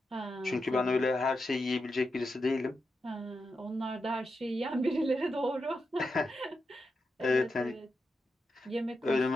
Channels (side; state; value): both; normal; correlation 0.87